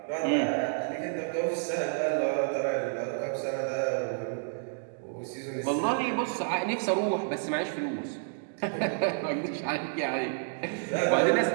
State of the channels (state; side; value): silent; left; digital silence